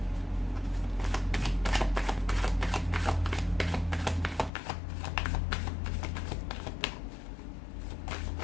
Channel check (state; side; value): drops out; right; at 4.5 s